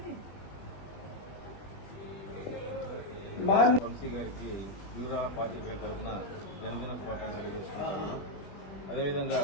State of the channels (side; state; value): right; late; 20 ms